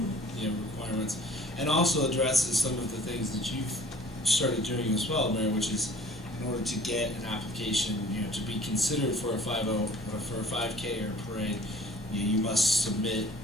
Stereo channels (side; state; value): both; normal; correlation 0.49